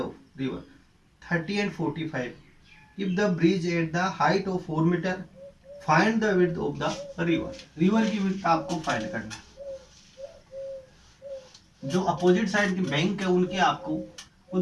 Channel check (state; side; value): identical; both; correlation 1.00